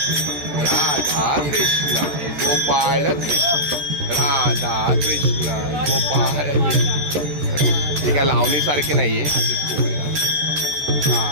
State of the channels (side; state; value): left; late; 14 ms